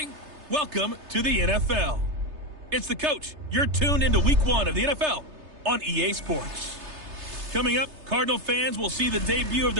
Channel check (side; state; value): left; late; 3.3 ms